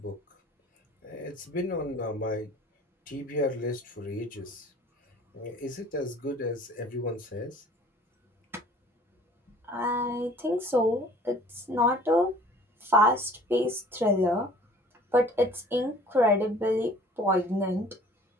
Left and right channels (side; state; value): both; normal; correlation 0.50